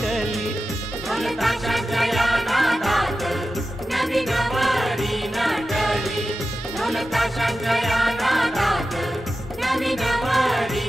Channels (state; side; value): normal; both; correlation 0.93